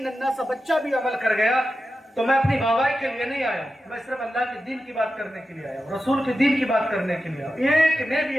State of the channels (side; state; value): both; normal; correlation 0.92